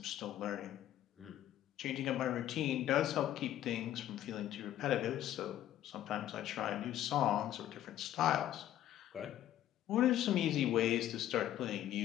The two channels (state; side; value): quieter; right; 12.4 dB